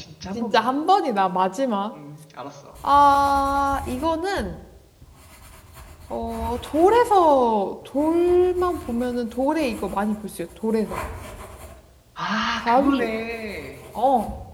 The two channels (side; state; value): both; identical; correlation 1.00